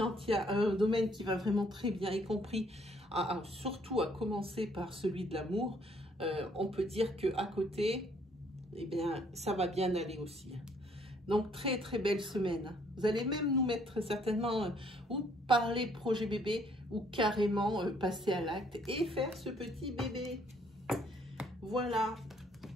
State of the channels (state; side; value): normal; both; correlation 0.64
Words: il y a un domaine qui va vraiment très bien, y compris, surtout à commencer par celui de l'amour, on peut dire qu'à côté, eh bien, ça va bien aller aussi. Donc, très, très belle semaine. Vous allez même nous mettre certainement ou parler projet bébé ou carrément passer à l'acte et faire ce petit bébé. Voilà.